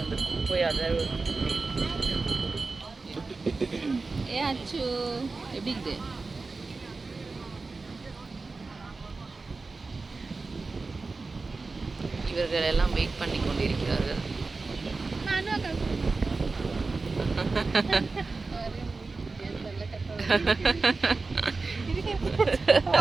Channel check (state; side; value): quieter; left; 3.9 dB